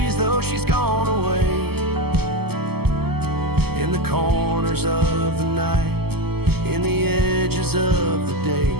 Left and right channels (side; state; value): left; late; 0.96 ms